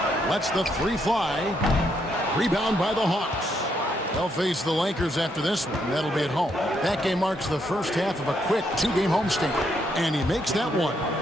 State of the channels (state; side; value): normal; both; correlation 0.76